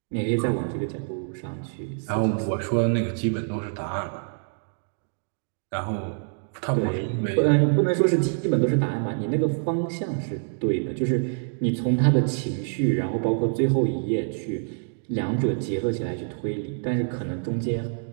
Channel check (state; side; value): silent; left; 61 dB below the other